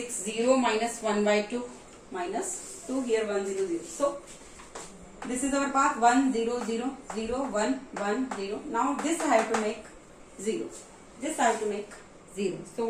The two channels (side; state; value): both; identical; correlation 1.00